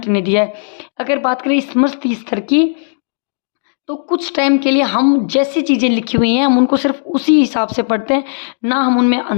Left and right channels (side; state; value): right; silent; digital silence